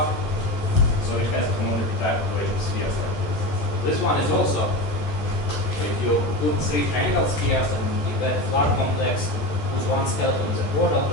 so it has a homotopy type of pressure spheres like this. This one is also, so if you put three triangle spheres and you get a flat complex whose one skeleton is a chordal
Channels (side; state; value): right; late; 14 ms